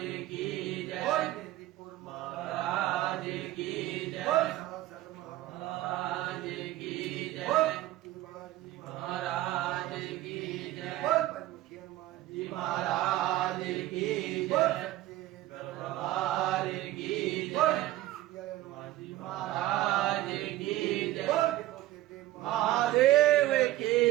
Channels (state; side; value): quieter; left; 15.5 dB